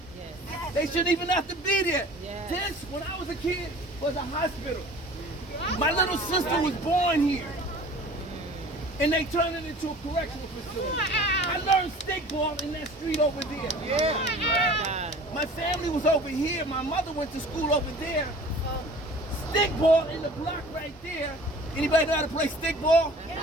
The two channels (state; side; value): normal; both; correlation 0.45